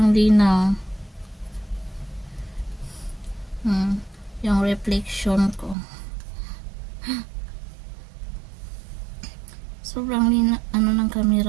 linaw. Yung reflection ko. Sobrang linaw, ano ng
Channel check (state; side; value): drops out; left; at 5.8 s